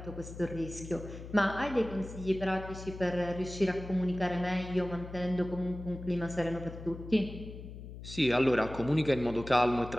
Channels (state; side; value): noise; left; hum, 12 dB below the sound